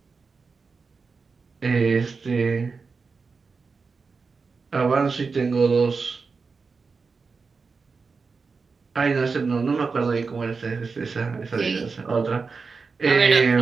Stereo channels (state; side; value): quieter; left; 4.7 dB